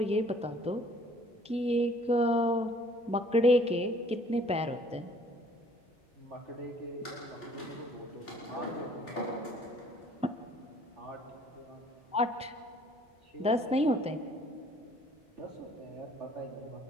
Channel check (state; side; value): normal; both; correlation 0.57